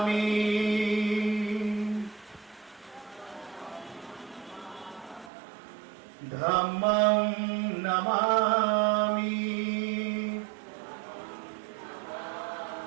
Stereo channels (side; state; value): left; drops out; at 5.3 s